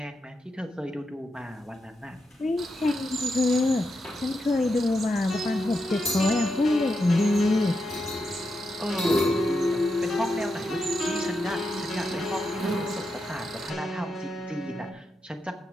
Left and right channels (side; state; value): both; normal; correlation 0.85